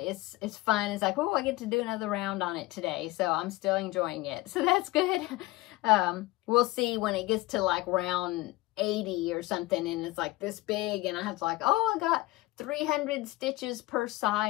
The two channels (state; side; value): quieter; right; 19.6 dB